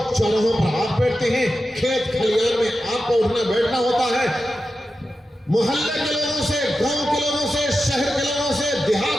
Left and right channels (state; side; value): normal; both; correlation 0.91